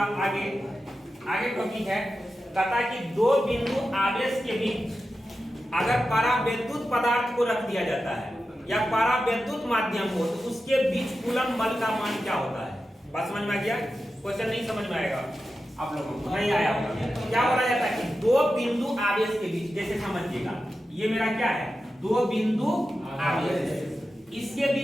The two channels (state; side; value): normal; both; correlation 0.91